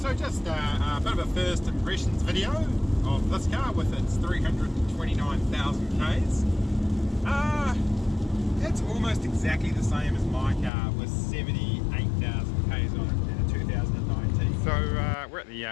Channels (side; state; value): right; drops out; at 10.7 s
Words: just a bit of a first impressions video of this car with its 329,000 Ks. It's almost exactly the same as my car with 78,000 Ks on it in a 2019. So we're at the